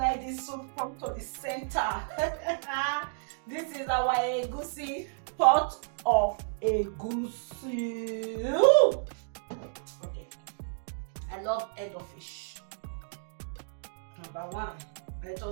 the soup come to the center. This is our egusi, pot of egusi. Okay. I love head of fish. Number one, let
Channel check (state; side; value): silent; left; digital silence